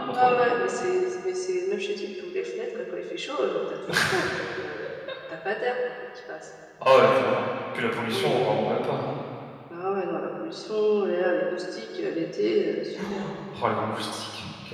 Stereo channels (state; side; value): identical; both; correlation 1.00